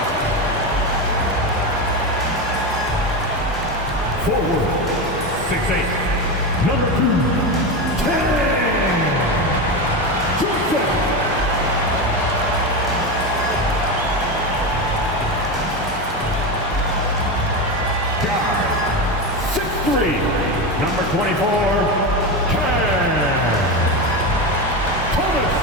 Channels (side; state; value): both; normal; correlation 0.17